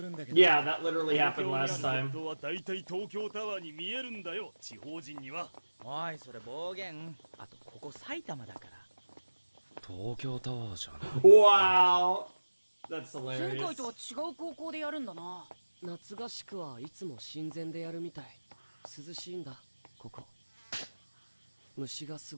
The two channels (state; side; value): inverted; both; correlation -1.00